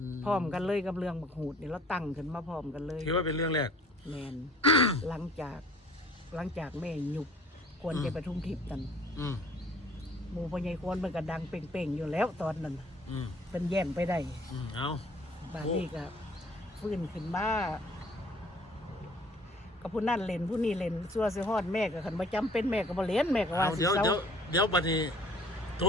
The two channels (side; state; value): both; normal; correlation 0.54